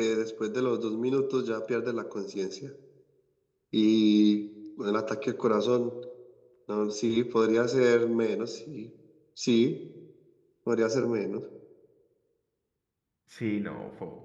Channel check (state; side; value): identical; both; correlation 1.00